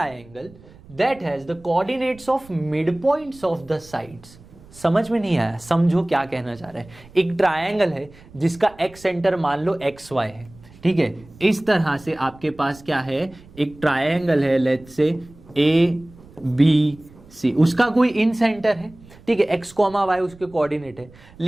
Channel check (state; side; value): noise; right; rumble, 23 dB below the sound